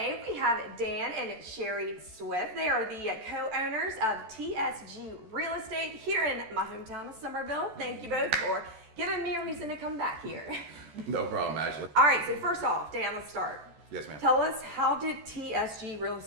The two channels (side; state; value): left; late; 14 ms